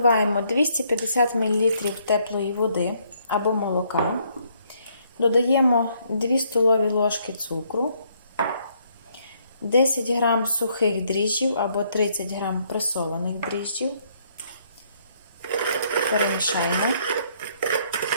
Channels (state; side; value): inverted; both; correlation -0.69